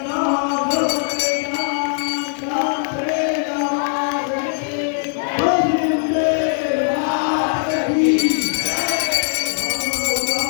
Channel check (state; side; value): silent; right; 57 dB below the other